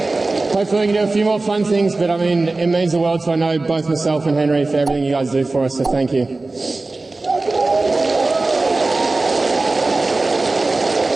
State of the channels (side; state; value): left; quieter; 3.3 dB